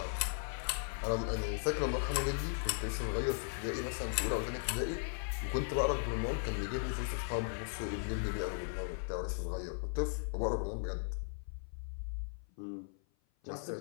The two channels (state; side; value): silent; right; 53 dB below the other